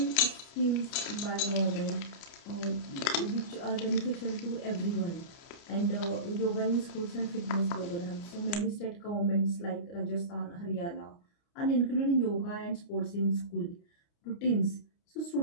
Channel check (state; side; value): late; right; 29 ms